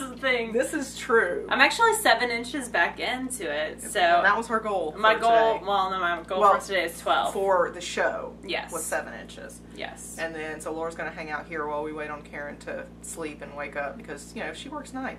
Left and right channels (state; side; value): identical; both; correlation 1.00